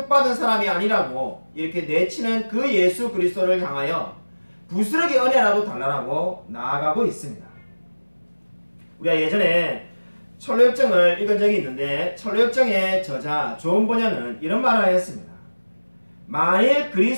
사람이 아니라고 이렇게 내치는 그 예수 그리스도를 향하여 부스러기 은혜라도 달라고 나아가고 있습니다. 우리가 예전에 철로역정을 읽은 적이 있는데 철로역정의 저자 존 번연은 이런 말을 하였습니다. 만일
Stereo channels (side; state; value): both; inverted; correlation -1.00